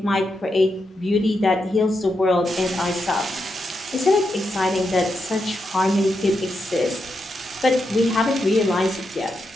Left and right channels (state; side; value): normal; both; correlation 0.85